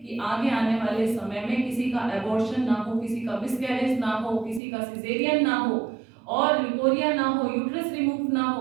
कि आगे आने वाले समय में किसी का एबॉर्शन ना हो, किसी का मिसकैरेज ना हो, किसी का सिजेरियन ना हो, और ल्यूकोरिया ना हो, यूट्रस रिमूव ना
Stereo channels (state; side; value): drops out; left; at 4.6 s